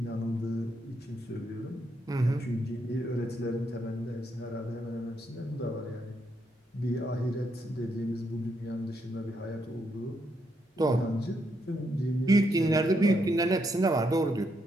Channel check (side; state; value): both; normal; correlation 0.78